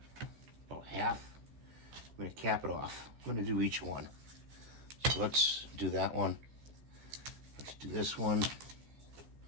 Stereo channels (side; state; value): left; late; 14 ms